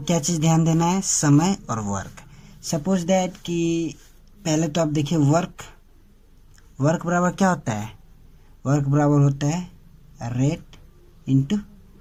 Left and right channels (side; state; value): both; identical; correlation 1.00